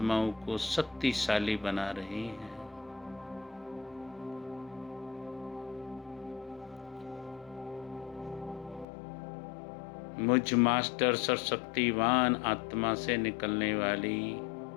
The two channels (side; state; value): right; drops out; at 8.8 s